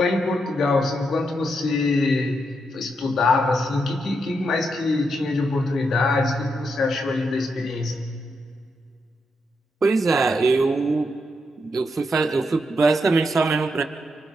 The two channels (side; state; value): both; normal; correlation 0.82